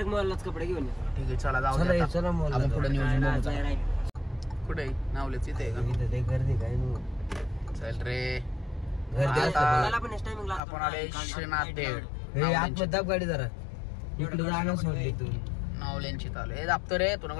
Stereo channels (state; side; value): drops out; right; at 10.6 s